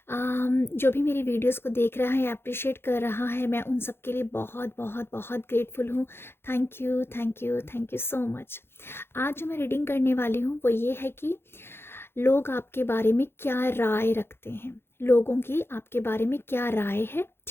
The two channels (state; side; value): late; right; 0.11 ms